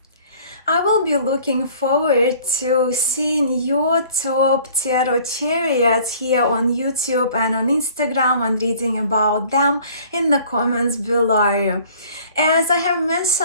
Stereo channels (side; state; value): both; inverted; correlation -0.52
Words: I will be looking forward to seeing your top tarot chariots here on YouTube and on Instagram and reading about them in the comments below. As I have